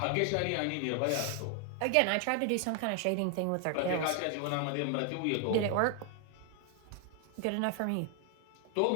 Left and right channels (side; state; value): both; different; correlation 0.00